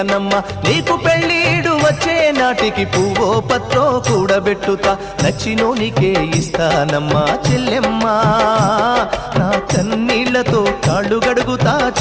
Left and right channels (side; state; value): both; identical; correlation 1.00